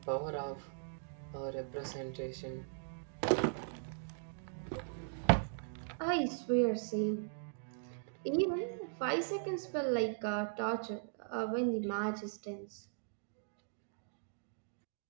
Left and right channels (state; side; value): silent; left; digital silence